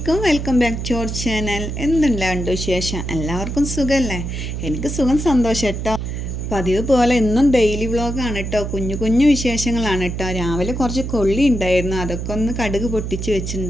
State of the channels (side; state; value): right; noise; hum, 5 dB below the sound